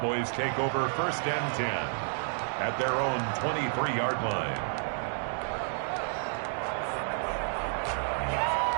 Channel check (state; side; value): silent; left; 58 dB below the other